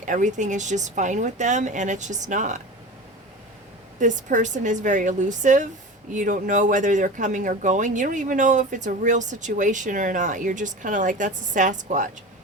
everything is just fine with them, and it's just not. This person is very elusive. You don't know whether they're coming or going. You don't even know if it's a real situation or not. You're just kind of like, that's a Sasquatch.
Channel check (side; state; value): both; normal; correlation 0.32